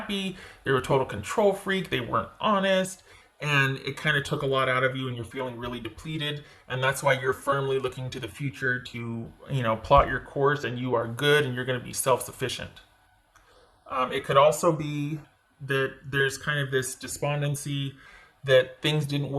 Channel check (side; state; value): both; identical; correlation 1.00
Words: They were a total control freak. They weren't honest. And it kind of took a lot out of you and you're feeling really depleted. And that's why you're firmly looking to the future to, plot your course and you are good and you're going to be self-sufficient. It could also be that there's kind of this despondency that things didn't